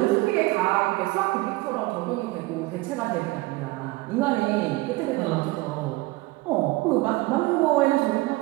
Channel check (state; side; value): quieter; left; 20.9 dB